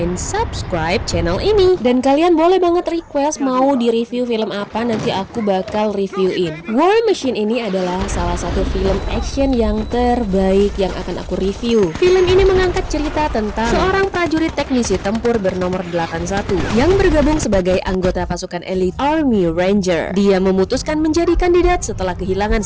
subscribe channel ini. Dan kalian boleh banget request mau di review film apa, nanti aku bakal reviewin. War Machine ini adalah salah satu film action yang terbaik yang akan aku review. Film ini mengangkat cerita tentang seorang prajurit teknisi tempur bernomor 81 yang bergabung sebagai anggota pasukan elit Army Ranger. Dia memutuskan menjadi kandidat setelah kehilangan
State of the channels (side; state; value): both; identical; correlation 1.00